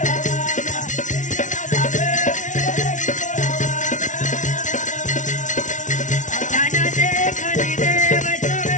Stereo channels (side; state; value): right; late; 0.37 ms